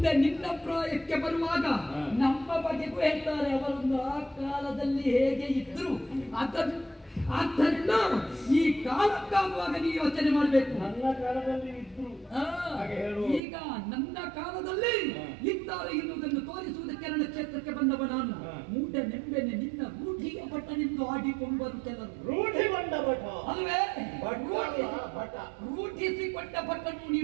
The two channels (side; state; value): left; drops out; at 13.4 s